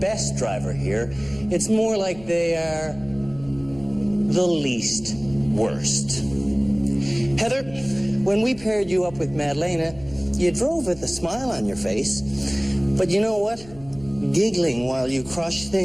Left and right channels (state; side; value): noise; left; hum, 20 dB below the sound